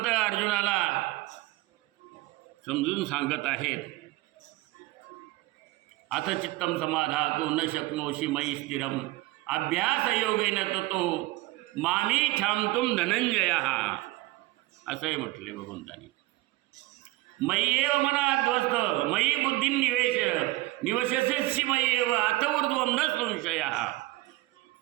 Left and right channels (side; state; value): left; quieter; 19.4 dB